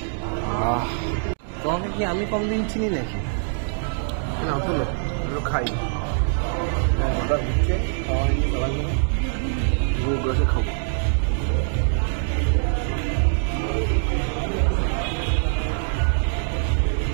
তোমাকে কি আমি কম দিন চিনি নাকি? না তোলো খাই অর্ডার দিচ্ছে, বসে খাবো।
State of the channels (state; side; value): silent; left; digital silence